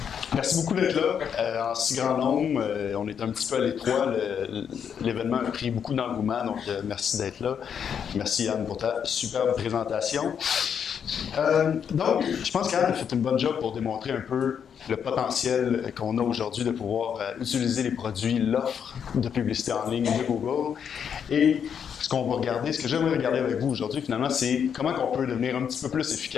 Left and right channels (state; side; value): quieter; right; 7.7 dB